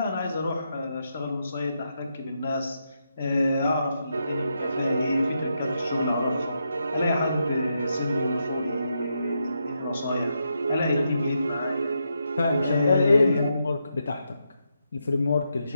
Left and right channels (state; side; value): inverted; both; correlation -0.83